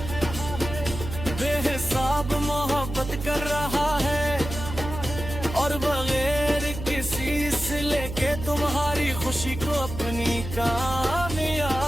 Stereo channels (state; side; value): noise; right; hum, 8 dB below the sound